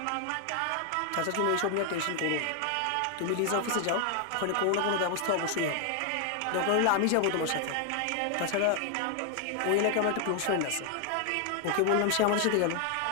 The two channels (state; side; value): different; both; correlation 0.00